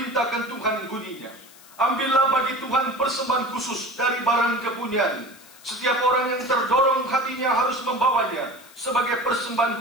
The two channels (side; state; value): left; noise; hiss, 23 dB below the sound